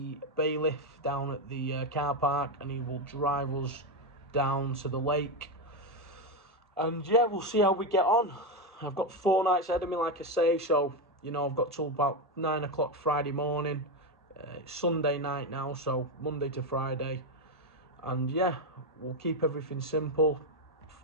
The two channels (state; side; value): normal; both; correlation 0.10